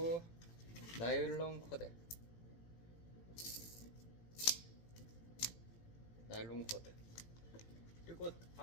나일론 코드, 나일론 코드. 그리고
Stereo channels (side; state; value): right; late; 18 ms